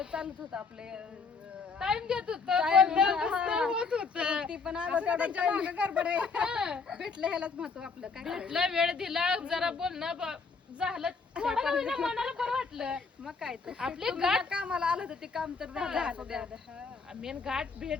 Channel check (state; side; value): quieter; right; 4.8 dB